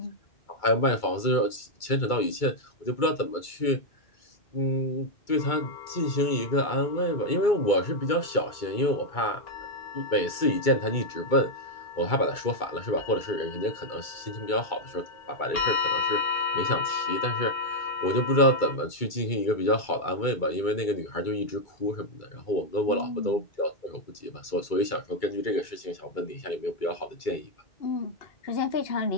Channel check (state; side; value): late; right; 2.3 ms